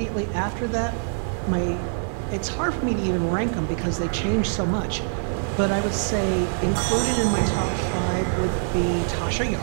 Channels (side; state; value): left; silent; digital silence